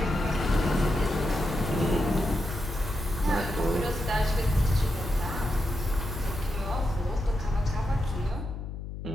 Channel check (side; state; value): left; noise; hum, 8 dB below the sound